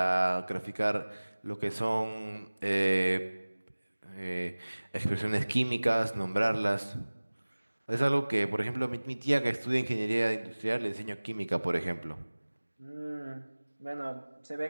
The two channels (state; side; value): inverted; both; correlation -1.00